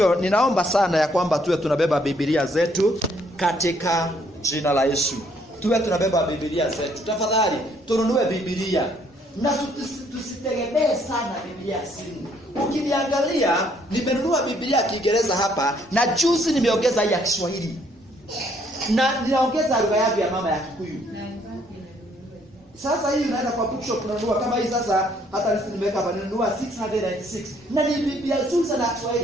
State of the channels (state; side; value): normal; both; correlation 0.66